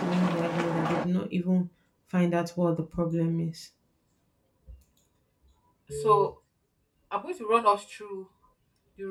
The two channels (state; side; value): identical; both; correlation 1.00